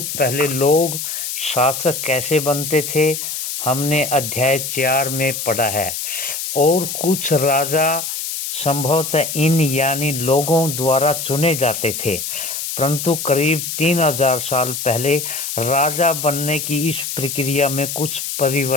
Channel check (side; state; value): left; noise; hiss, 5 dB below the sound